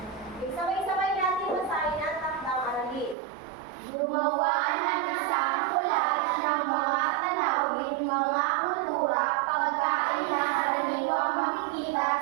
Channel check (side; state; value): left; drops out; at 3.2 s